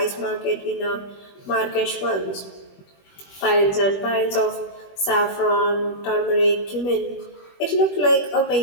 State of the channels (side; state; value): right; late; 21 ms